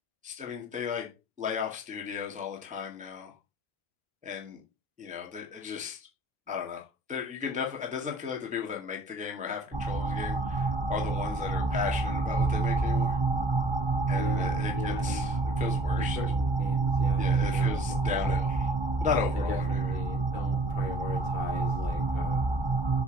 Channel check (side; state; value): both; normal; correlation 0.51